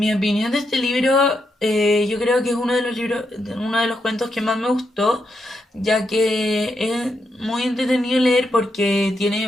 opinión de este libro, yo creo que es uno de los cuentos que más me gustó, ya que es muy entretenido leer porque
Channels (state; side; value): normal; both; correlation 0.82